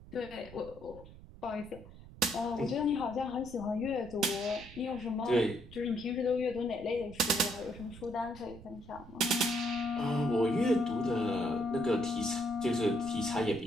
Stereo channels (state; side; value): noise; right; rumble, 17 dB below the sound